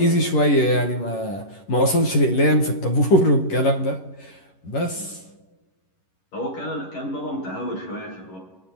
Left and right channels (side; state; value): right; late; 11 ms